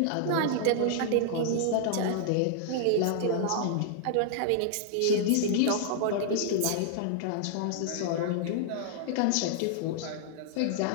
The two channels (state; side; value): different; both; correlation -0.01